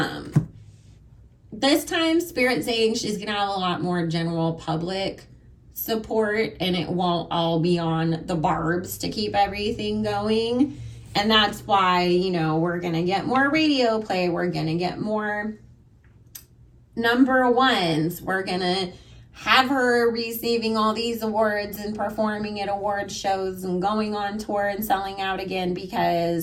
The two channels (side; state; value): both; identical; correlation 1.00